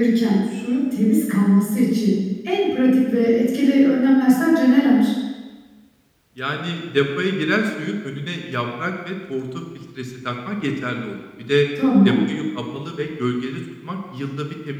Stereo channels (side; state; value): both; identical; correlation 1.00